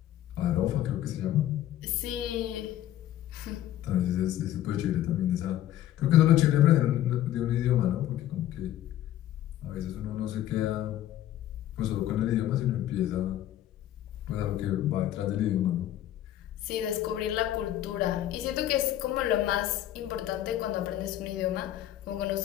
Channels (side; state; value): right; quieter; 12.6 dB